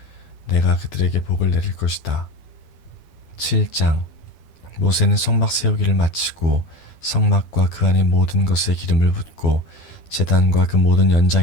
내가 그들에게 복을 내릴 것이다. 7장. 모세는 성막 세우기를 마치고 성막과 그 안의 모든 것에 기름을 붓고 제단과 그 모든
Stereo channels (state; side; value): late; right; 12 ms